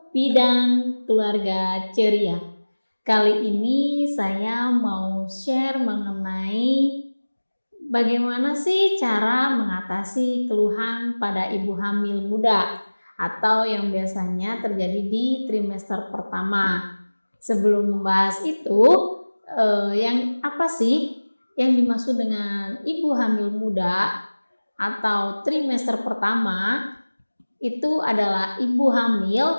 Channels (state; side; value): inverted; both; correlation -1.00